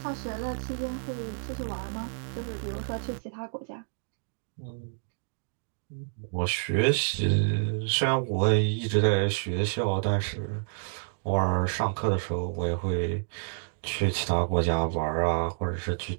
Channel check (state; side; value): silent; left; digital silence